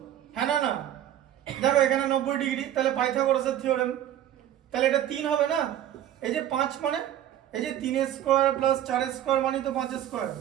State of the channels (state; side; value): quieter; left; 11.5 dB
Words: হ্যাঁ না? দেখো এখানে 90 ডিগ্রি, তাহলে পাইথাগোরাসের থিওরেম, তাহলে এটা 3 হবে না। এই যে 5 মানে এই যে 3 স্কয়ার প্লাস 4 স্কয়ার মানে তো 5 স্কয়ার,